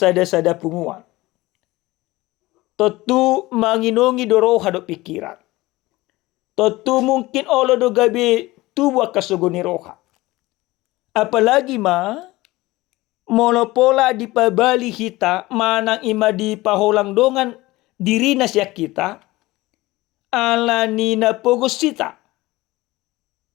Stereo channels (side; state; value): right; quieter; 19.5 dB